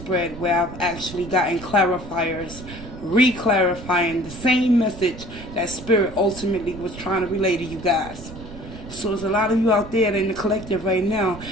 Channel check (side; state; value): right; noise; rumble, 13 dB below the sound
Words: where I've actually gotten clarifiers, re-clarifying the same message that Spirit ultimately was trying to relay to you guys. So there's a lot of you out there in the collective right now,